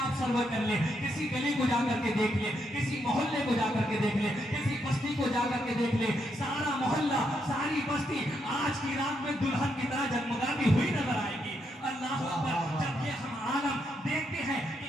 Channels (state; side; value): normal; both; correlation 0.79